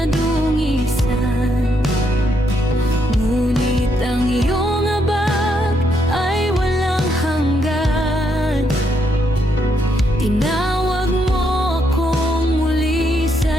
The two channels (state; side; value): normal; both; correlation 0.76